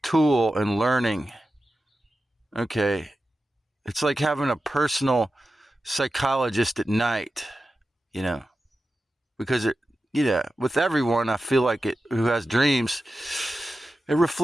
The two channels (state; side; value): normal; both; correlation 0.93